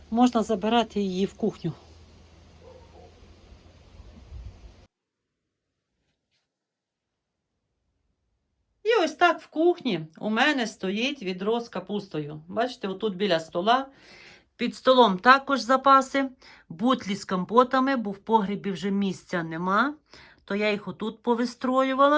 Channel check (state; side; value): identical; both; correlation 1.00